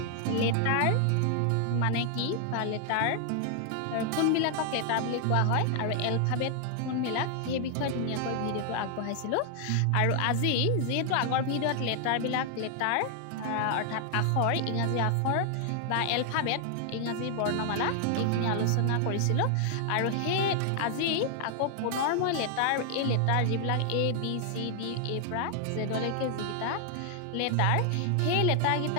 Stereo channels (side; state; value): both; different; correlation 0.00